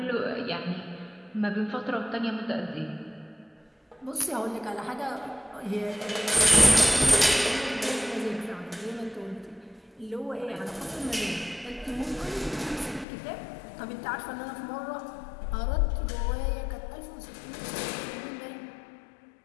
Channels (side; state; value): right; drops out; at 13.1 s